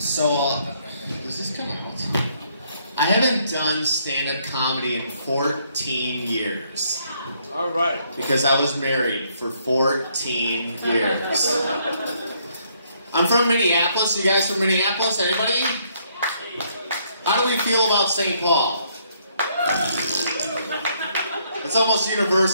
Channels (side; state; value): both; inverted; correlation -0.70